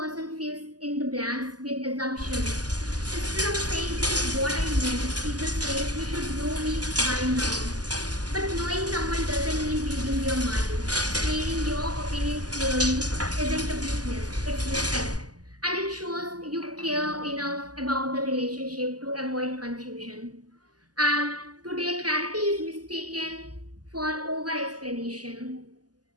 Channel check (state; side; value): late; left; 0.68 ms